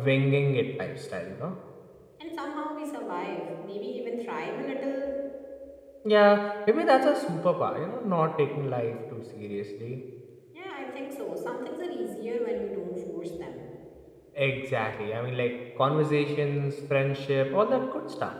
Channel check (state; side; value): identical; both; correlation 1.00